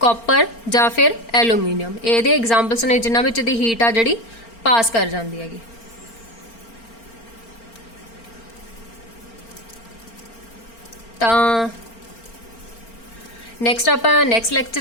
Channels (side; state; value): right; late; 4.4 ms